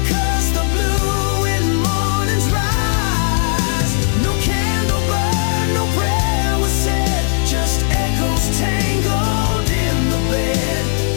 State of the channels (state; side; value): silent; right; digital silence